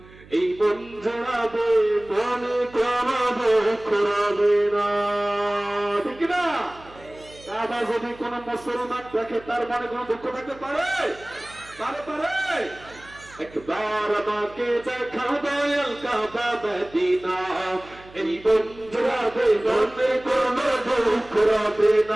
এই মন জড়াবে মনে করাবে করাবে না। ঠিক না? কাবা যদি কোন মুসলমান দেখে তার মনে কোন দুঃখ থাকতে পারে? পারে পারে? একবার আমাকে দেখাও দয়াল কাবা মদিনা, এই মন জড়াবে মনে কোনো দুঃখ রবে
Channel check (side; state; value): right; noise; hum, 22 dB below the sound